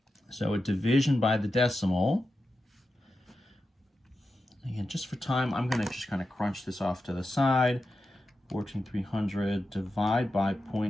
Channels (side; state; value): both; normal; correlation 0.90